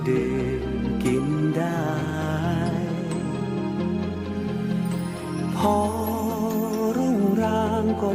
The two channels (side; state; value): both; identical; correlation 1.00